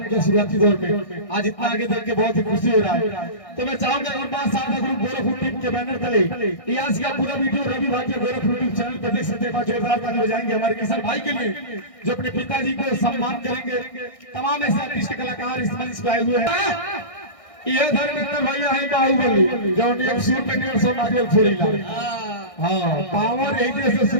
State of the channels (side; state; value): right; late; 1.6 ms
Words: किया शुरुआती दौर में, आज इतना आगे देख के बहुत ही खुशी हो रहा है। तो मैं चाहूंगा एक बार साथ ग्रुप गोरखपुर टीम के बैनर तले आज का पूरा वीडियो रवि भाई के गोरखपुर टीम चैनल पर देख सकते हैं। जोरदार ताली बजाएंगे हमारे किशन भाई के लिए जो अपने पिताजी को सम्मान करेंगे। तमाम ऐसे आर्टिस्ट कलाकार इस मंच पे आए हुए हैं। ये धर्मेंद्र भैया है बाहुबली जो एक सूर पे 150 नारियल फोड़ीला। हां पावर यही से